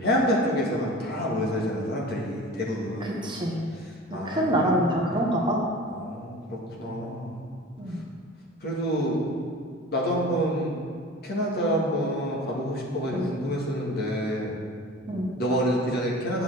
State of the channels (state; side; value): normal; both; correlation 0.39